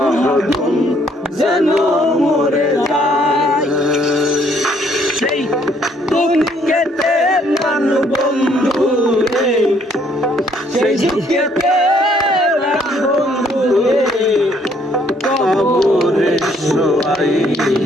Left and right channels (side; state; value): both; normal; correlation 0.66